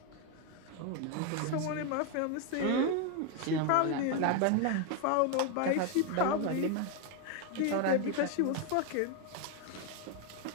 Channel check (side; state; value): both; different; correlation 0.01